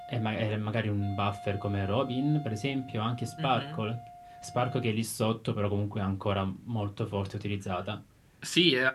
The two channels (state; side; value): identical; both; correlation 1.00